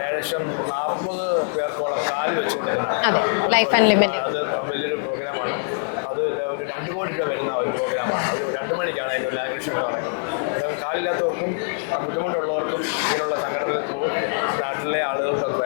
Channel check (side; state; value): right; silent; 63 dB below the other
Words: 40 പേർക്കോളം കാല് വെച്ച് കൊടുക്കുന്ന അത് വലിയൊരു പ്രോഗ്രാമാണ്. അത് ഒരു 2 കോടി രൂപ വരുന്ന ഒരു പ്രോഗ്രാമാണ്. അത് 2 മണിക്കാണ് അതിൻ്റെ ഇനാഗുറേഷൻ ഇവിടെ നടക്കുന്നത്. അന്നേരം കാലില്ലാത്തവർക്കും ബുദ്ധിമുട്ടുള്ളവർക്കും ഇങ്ങനെയുള്ള സംഘടന ത്രൂ നാട്ടിലെ ആളുകൾക്ക്